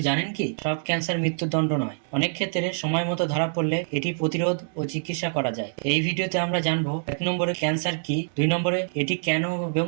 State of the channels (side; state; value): left; silent; digital silence